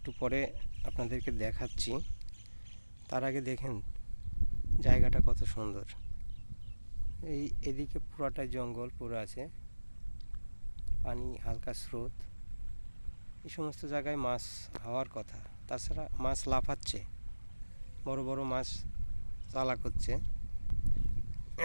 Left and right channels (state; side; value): inverted; both; correlation -1.00